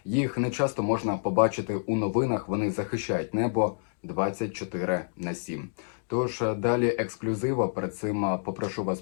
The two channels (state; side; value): silent; right; digital silence